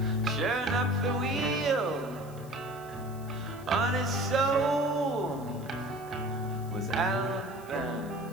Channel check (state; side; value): noise; left; hiss, 22 dB below the sound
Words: Sure enough, the wheel on his soul was outbound.